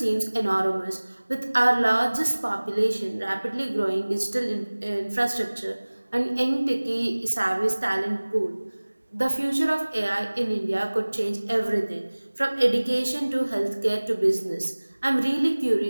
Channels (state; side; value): inverted; both; correlation -1.00